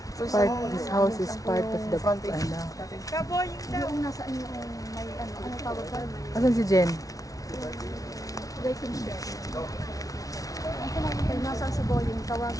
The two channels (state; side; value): late; right; 0.17 ms